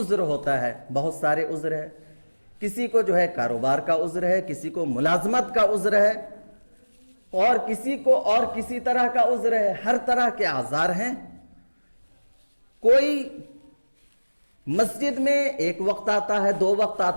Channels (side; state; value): both; inverted; correlation -1.00